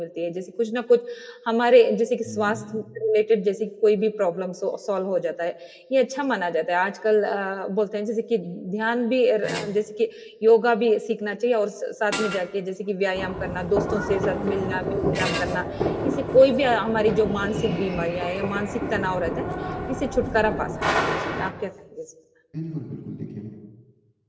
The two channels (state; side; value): identical; both; correlation 1.00